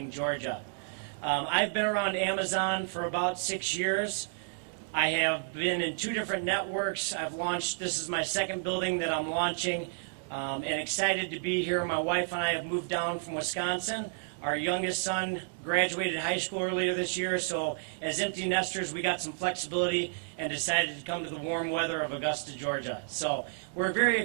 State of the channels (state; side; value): silent; left; digital silence